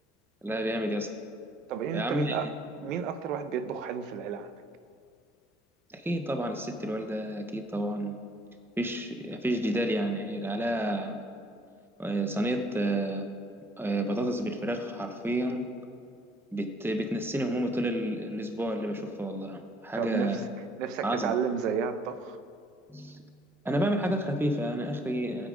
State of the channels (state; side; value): normal; both; correlation 0.62